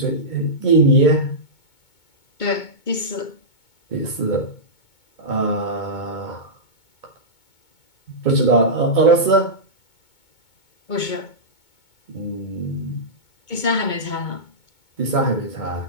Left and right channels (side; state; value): right; late; 2.2 ms